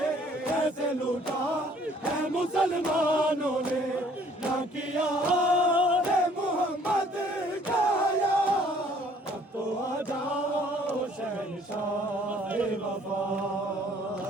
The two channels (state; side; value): normal; both; correlation 0.58